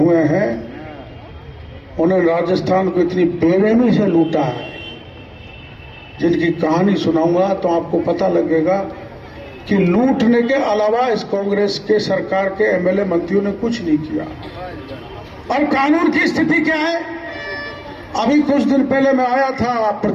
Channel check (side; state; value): both; identical; correlation 1.00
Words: हैं, उन्हें राजस्थान को इतनी बेरहमी से लूटा है, जिनकी कहानी सुनाऊंगा तो आपको पता लगेगा कि लूटने के अलावा इस कांग्रेस के सरकार के एमएलए मंत्रियों ने कुछ नहीं किया। और कानून की स्थिति क्या है? अभी कुछ दिन पहले मैं आया था